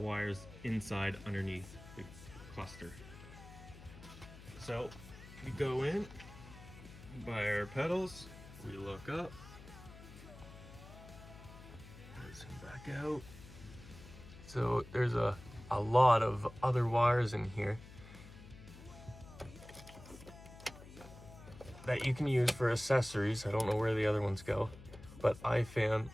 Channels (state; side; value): noise; left; hum, 17 dB below the sound